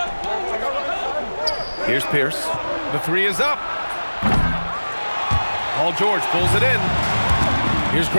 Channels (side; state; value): both; inverted; correlation -1.00